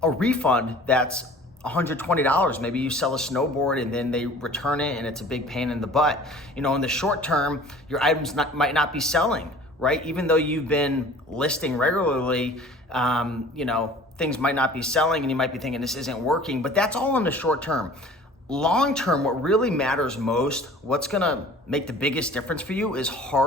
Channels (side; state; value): both; normal; correlation 0.46